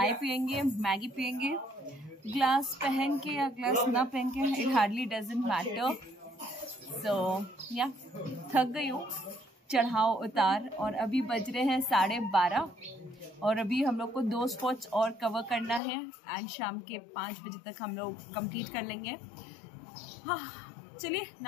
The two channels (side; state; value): right; drops out; at 15.8 s